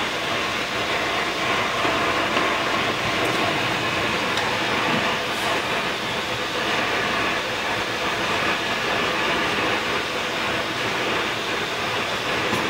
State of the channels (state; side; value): identical; both; correlation 1.00